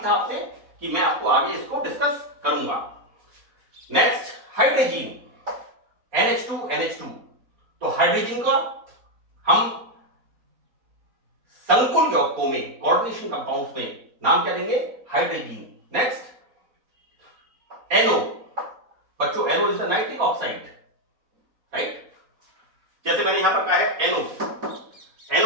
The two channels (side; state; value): left; late; 4.1 ms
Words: था आपसे कि मैं आपको आगे इसको डिस्कस करूंगा। नेक्स्ट, हाइड्रोजीन, NH2 तो हाइड्रोजीन का हम संकुल यौगिकों में, कोऑर्डिनेशन कंपाउंड्स में नाम क्या देंगे, हाइड्रोजीन। नेक्स्ट, NO, बच्चों NO is the nitric oxide, right. जैसे मैंने यहां पर कहा है